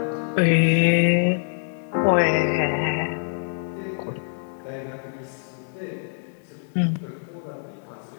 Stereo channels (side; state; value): right; silent; digital silence